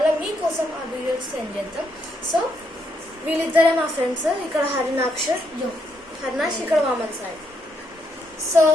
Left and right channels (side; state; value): both; normal; correlation 0.76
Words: మీకోసం ఆ వీడియోస్ సెండ్ చేద్దాం. సో వీళ్ళిద్దరే మా ఫ్రెండ్స్. ఇక్కడ హరినాక్ష్, ఇక్కడ వామన్ సాయి. సో